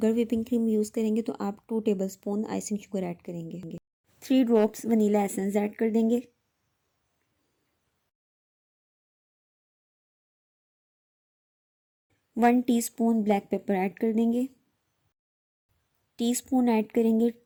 whipping cream use करेंगे तो आप 2 टेबलस्पून आइसिंग शुगर ऐड करेंगे। 3 ड्रॉप्स वनीला एसेंस ऐड कर देंगे। One teaspoon black pepper add कर देंगे। टीस्पून ऐड करेंगे,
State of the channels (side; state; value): both; identical; correlation 1.00